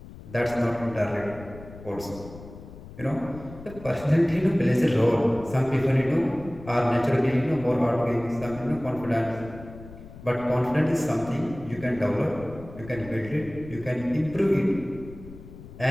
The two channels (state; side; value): noise; left; rumble, 16 dB below the sound